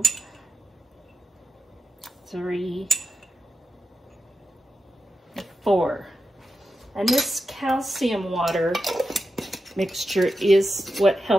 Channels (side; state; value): both; normal; correlation 0.88